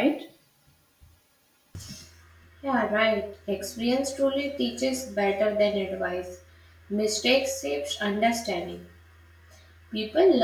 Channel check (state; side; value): identical; both; correlation 1.00